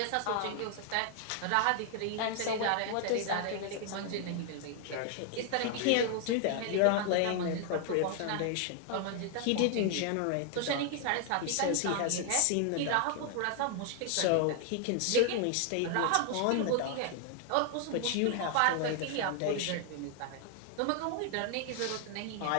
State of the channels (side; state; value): both; different; correlation 0.00